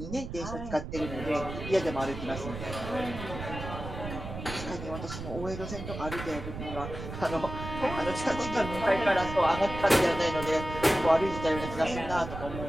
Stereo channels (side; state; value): right; noise; rumble, 8 dB below the sound